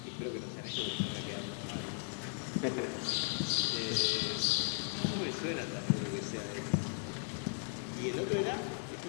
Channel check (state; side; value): silent; right; 53 dB below the other